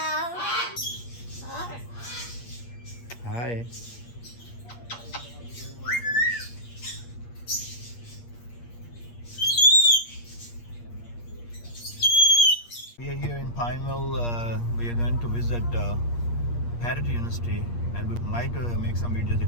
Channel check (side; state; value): right; late; 8.5 ms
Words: Hi. We are here in Pineville. We are going to visit Parrot University, and we might make some videos